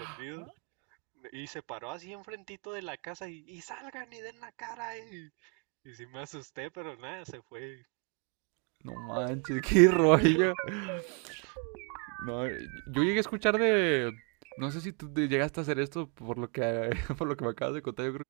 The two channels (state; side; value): quieter; left; 36.4 dB